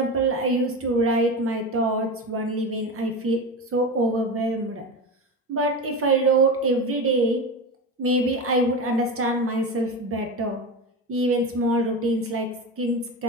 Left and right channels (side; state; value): both; normal; correlation 0.23